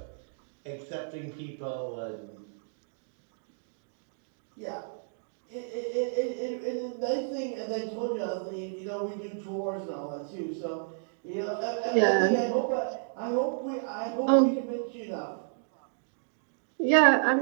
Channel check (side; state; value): left; silent; digital silence